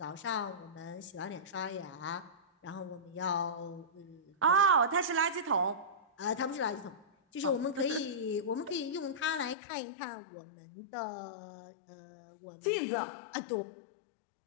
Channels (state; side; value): drops out; right; at 9.6 s